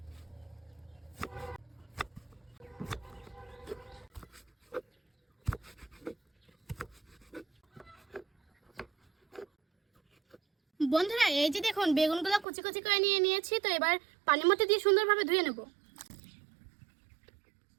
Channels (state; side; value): drops out; left; at 12.5 s